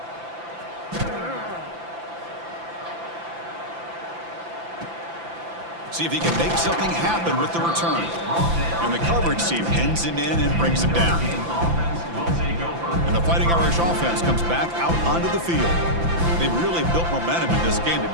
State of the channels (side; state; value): left; late; 5.9 ms